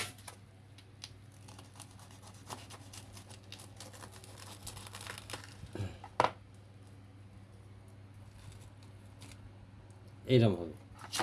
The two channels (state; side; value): identical; both; correlation 1.00